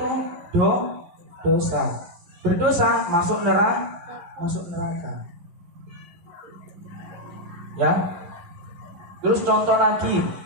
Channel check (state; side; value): late; left; 11 ms